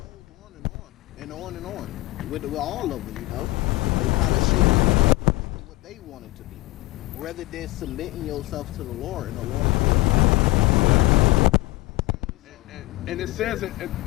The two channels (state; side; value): quieter; right; 20.2 dB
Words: And on. With all of them, you know. They kind of shape it to what they want it to be. Rather than submitting yourself to the Lord and the Lord will. And it says it,